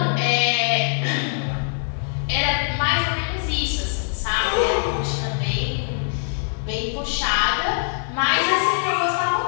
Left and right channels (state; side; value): silent; right; 64 dB below the other